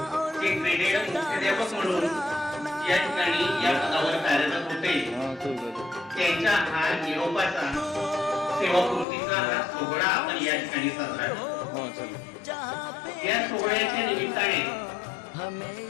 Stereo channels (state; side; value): drops out; right; at 9.1 s